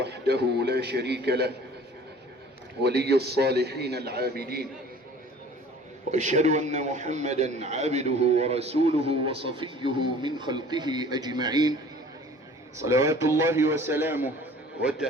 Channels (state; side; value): normal; both; correlation 0.48